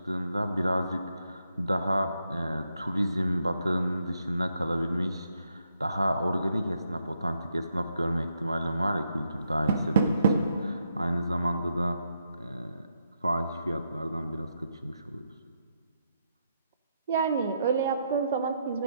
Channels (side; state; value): both; inverted; correlation -0.79